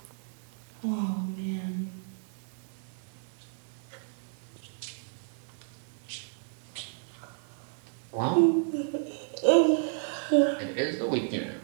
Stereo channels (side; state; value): left; silent; 57 dB below the other